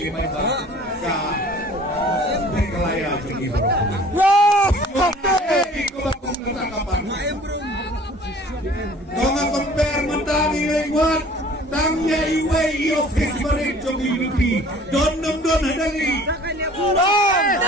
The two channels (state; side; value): normal; both; correlation 0.49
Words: baca. Meghalaya jongi. Ikut bakum ketangkapan. Donga compare mentari lewat. Tangnya iwe Nay office marin jong UDP. Don hadali.